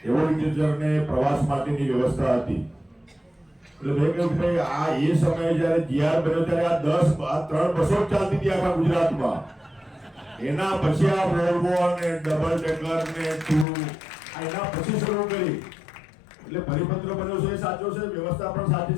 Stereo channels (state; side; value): drops out; right; at 13.7 s